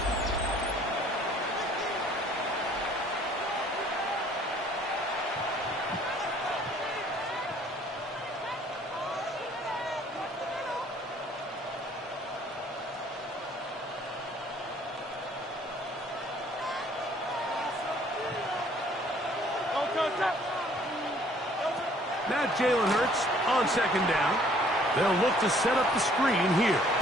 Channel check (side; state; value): both; normal; correlation 0.59